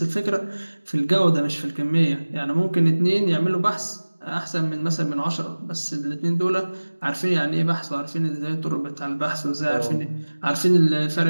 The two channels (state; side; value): inverted; both; correlation -1.00